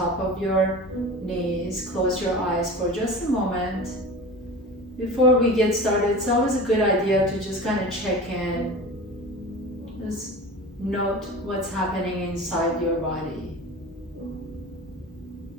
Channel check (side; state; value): both; normal; correlation 0.34